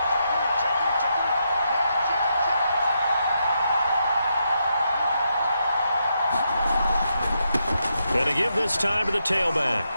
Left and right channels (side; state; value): both; inverted; correlation -0.82